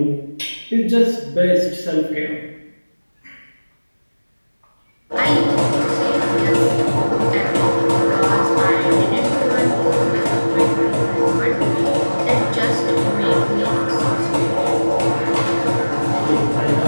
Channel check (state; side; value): inverted; both; correlation -1.00